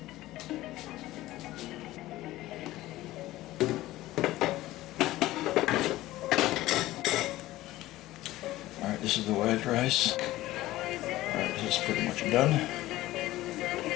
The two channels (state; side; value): quieter; right; 16.6 dB